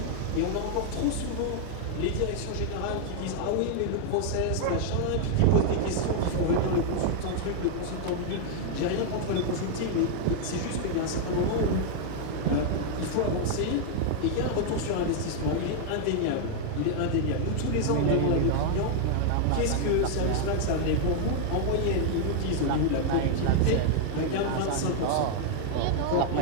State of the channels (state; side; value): different; both; correlation 0.00